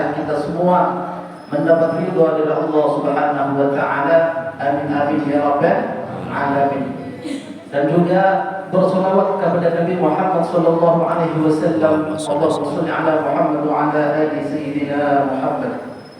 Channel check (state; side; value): identical; both; correlation 1.00